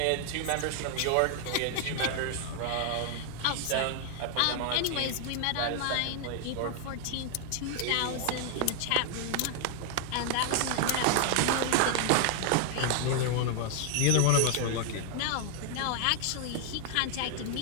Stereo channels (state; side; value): different; both; correlation 0.00